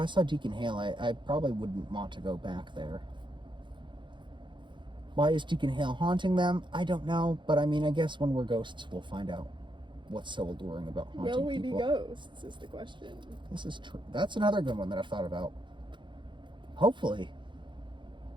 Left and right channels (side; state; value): left; late; 0.23 ms